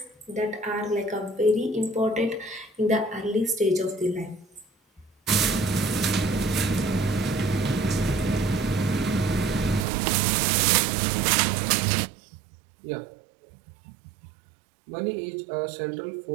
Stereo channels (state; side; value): drops out; left; at 9.9 s